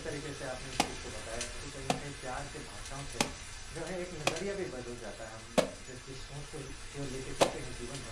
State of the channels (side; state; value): both; identical; correlation 1.00